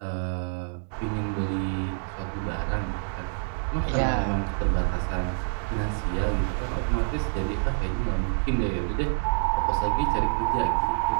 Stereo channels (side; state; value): left; silent; digital silence